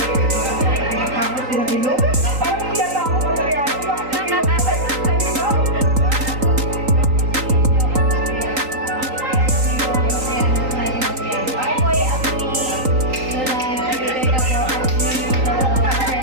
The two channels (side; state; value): left; late; 3.9 ms